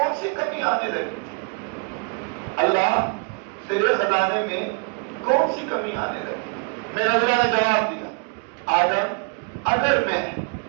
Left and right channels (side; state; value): left; quieter; 36.4 dB